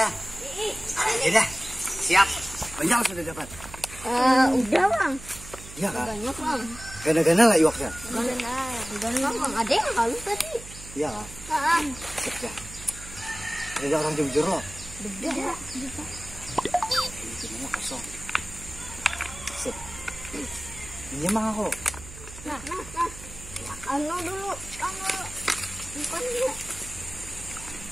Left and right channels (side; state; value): right; noise; hum, 15 dB below the sound